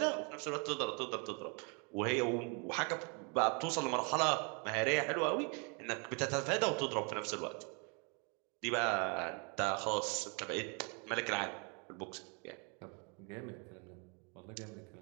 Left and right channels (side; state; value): left; quieter; 34.9 dB